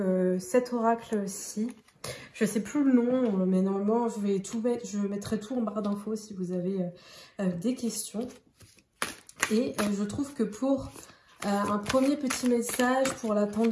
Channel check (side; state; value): both; identical; correlation 1.00